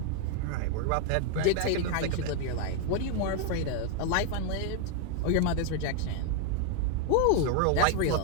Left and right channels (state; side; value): different; both; correlation 0.01